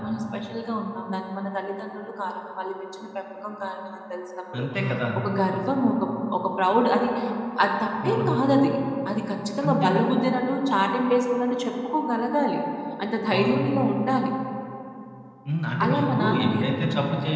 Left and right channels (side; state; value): both; identical; correlation 1.00